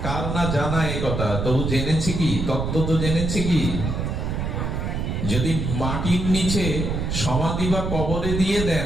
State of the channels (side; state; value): right; noise; rumble, 2 dB below the sound